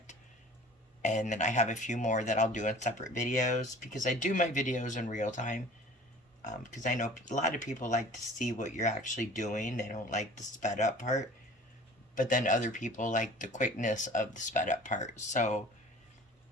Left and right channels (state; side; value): normal; both; correlation 0.45